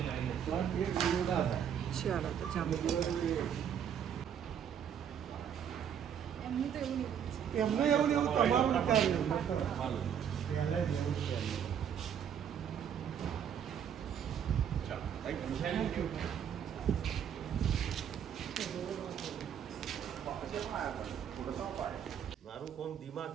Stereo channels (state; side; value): quieter; left; 8.6 dB